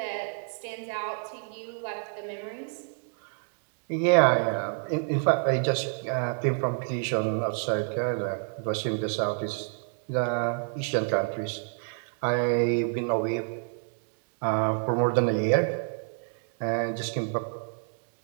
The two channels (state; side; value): silent; left; 58 dB below the other